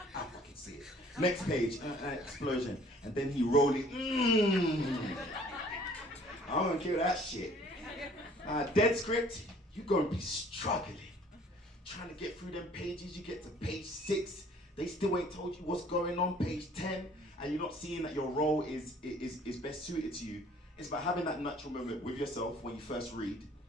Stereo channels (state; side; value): normal; both; correlation 0.56